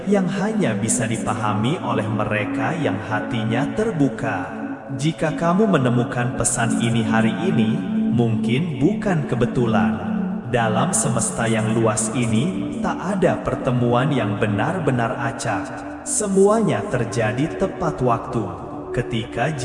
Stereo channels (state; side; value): identical; both; correlation 1.00